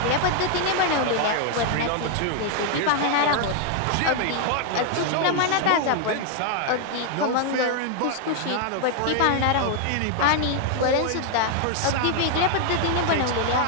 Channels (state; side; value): different; both; correlation 0.00